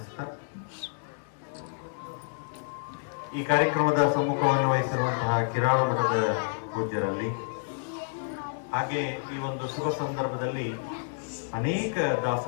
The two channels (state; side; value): silent; right; digital silence